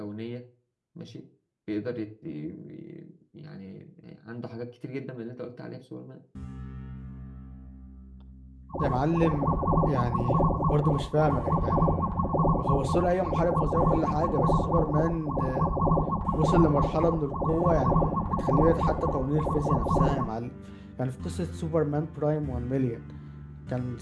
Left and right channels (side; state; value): both; identical; correlation 1.00